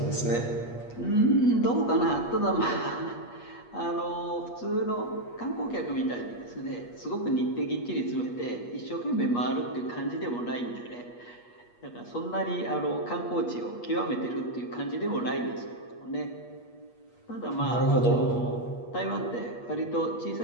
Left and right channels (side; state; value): right; late; 8.4 ms